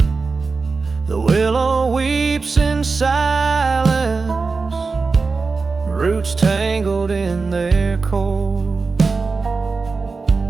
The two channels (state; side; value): quieter; left; 4.3 dB